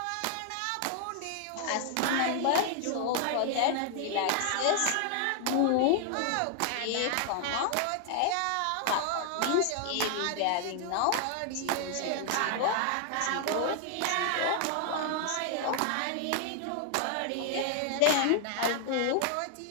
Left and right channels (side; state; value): both; different; correlation 0.00